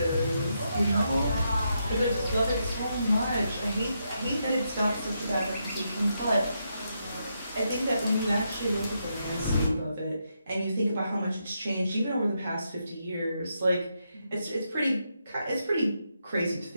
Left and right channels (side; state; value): both; inverted; correlation -0.82